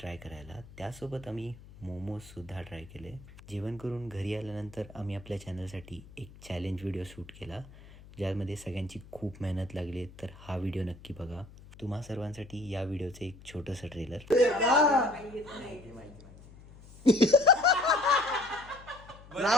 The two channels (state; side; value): noise; left; hum, 20 dB below the sound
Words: करायला. त्यासोबत आम्ही मोमोजसुद्धा ट्राय केले. जेवण करून घरी आल्यानंतर आम्ही आपल्या चॅनलसाठी एक चॅलेंज व्हिडिओ शूट केला, ज्यामध्ये सगळ्यांची खूप मेहनत लागली. तर हा व्हिडिओ नक्की बघा. तुम्हा सर्वांसाठी या व्हिडिओचं एक छोटंसं trailer.